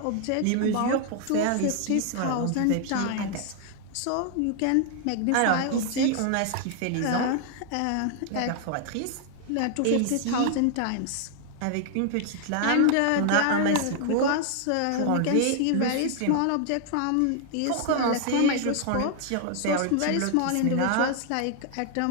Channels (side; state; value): both; different; correlation 0.00